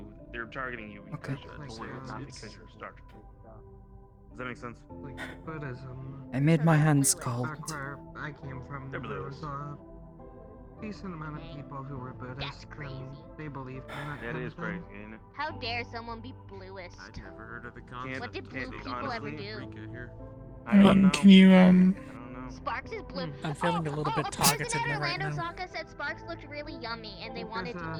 they're targeting you because you're blue, not because you're a Star Children. Does that make sense? Like Buddhism. I made my hands cold. Back where I came from, there was a decent amount of people who were Buddhist, and they believed in that That kind is of thing. crazy, ain't it? How dare someone be bluest? I'd never heard of the concept. What did blue people ever do? Can you Sparks is blue. I'm feeling a little bit A person targeted at right Orlando now. Saka said Sparks looked really yummy and they wanted to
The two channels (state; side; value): identical; both; correlation 1.00